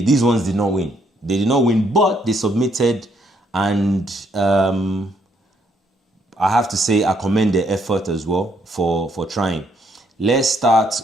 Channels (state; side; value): normal; both; correlation 0.71